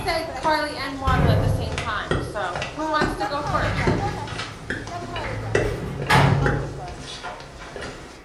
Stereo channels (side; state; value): both; identical; correlation 1.00